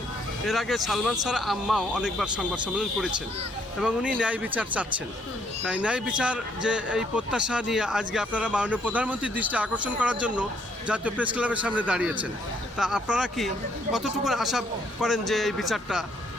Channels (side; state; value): both; normal; correlation 0.69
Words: এর আগে সালমান শাহর আম্মাও অনেকবার সংবাদ সম্মেলন করেছেন এবং উনি ন্যায় বিচার চাচ্ছেন, তাই ন্যায় বিচার যে এই প্রত্যাশা নিয়ে আজকে আপনারা মাননীয় প্রধানমন্ত্রীর দৃষ্টি আকর্ষণ করার জন্য জাতীয় প্রেস ক্লাবের সামনে দাঁড়িয়েছেন, তা আপনারা কি কতটুকু আশা করেন যে এই বিচারটা